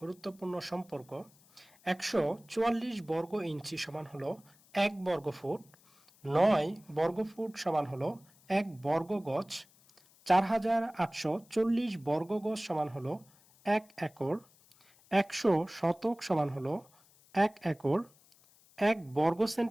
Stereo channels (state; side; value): noise; left; hiss, 29 dB below the sound